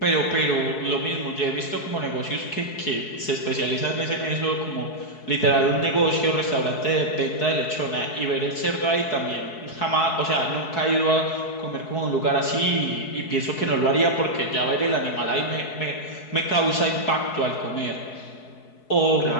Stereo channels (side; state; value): right; late; 4.7 ms